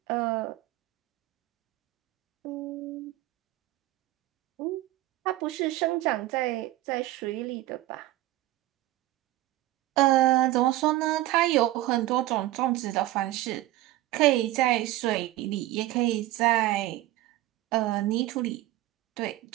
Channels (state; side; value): quieter; left; 16.3 dB